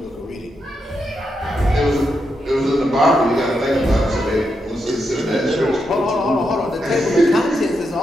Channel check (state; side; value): normal; both; correlation 0.83